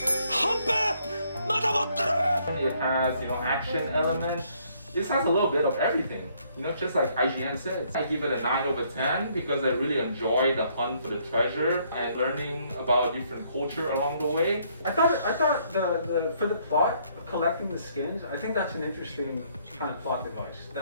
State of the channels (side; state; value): both; inverted; correlation -0.67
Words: It has, you know, action element. This has a little bit of everything, you know, just like IGN says. I give it a 9 over 10 because I really enjoy the hunt for the treasure and learning about different culture along the way. I thought the for the plot, collecting the skins, I think that's an interesting kind of plot device.